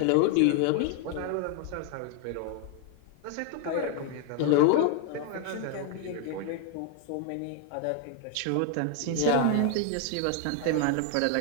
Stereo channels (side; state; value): both; different; correlation 0.00